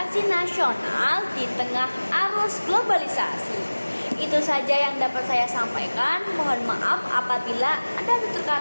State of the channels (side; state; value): both; inverted; correlation -1.00